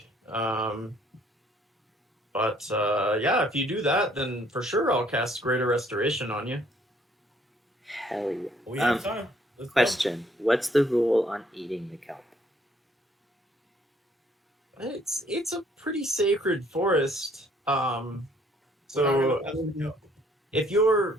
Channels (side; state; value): both; normal; correlation 0.63